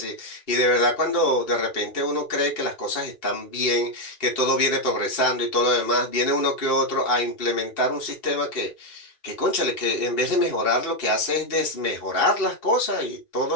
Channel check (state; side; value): late; right; 2.6 ms